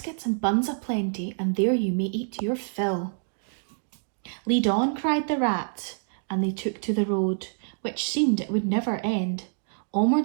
and buns aplenty, and there you may eat your fill." "Lead on," cried the rat, and they took to the road, which seemed it would never end.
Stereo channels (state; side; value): silent; left; digital silence